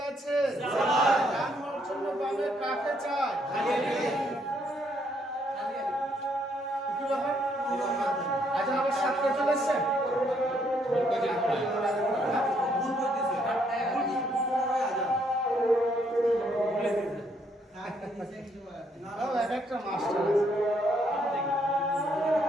আছে টান হওয়ার জন্য বামে কাকে চায় কি ব্যাপার আজ আবার সাত করে চলে এসছে একটা মাস্টার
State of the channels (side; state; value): both; normal; correlation 0.71